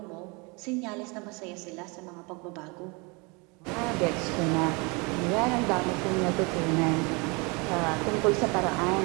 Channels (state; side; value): quieter; left; 29.2 dB